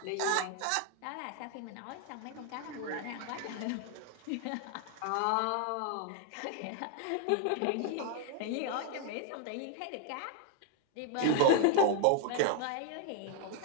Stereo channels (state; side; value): different; both; correlation 0.00